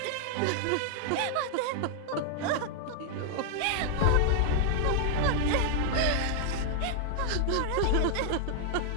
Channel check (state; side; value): different; both; correlation -0.01